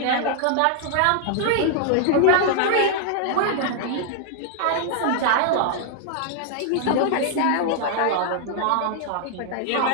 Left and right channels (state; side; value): different; both; correlation 0.00